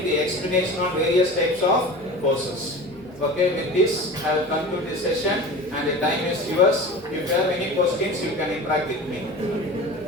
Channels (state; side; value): normal; both; correlation 0.35